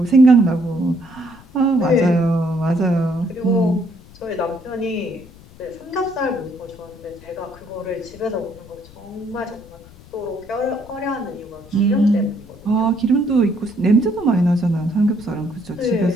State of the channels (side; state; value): left; noise; rumble, 22 dB below the sound